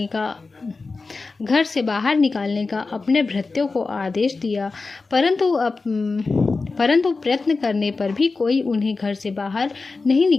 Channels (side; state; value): right; quieter; 4.0 dB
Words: निकालने का अपने भृत्यों को आदेश दिया, परंतु प्रयत्न करने पर भी कोई उन्हें घर से बाहर नहीं